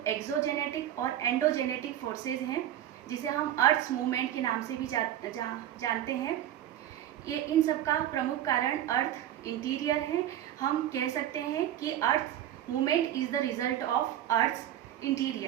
एक्सोजेनेटिक और एंडोजेनेटिक फोर्सेज हैं, जिसे हम अर्थ मूवमेंट के नाम से भी जानते हैं। ये इन सब का प्रमुख कारण अर्थ इंटीरियर है। हम कह सकते हैं कि earth movement is the result of earth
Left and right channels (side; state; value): left; quieter; 11.7 dB